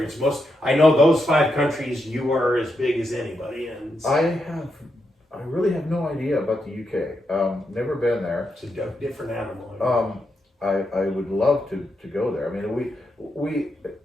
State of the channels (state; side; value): normal; both; correlation 0.83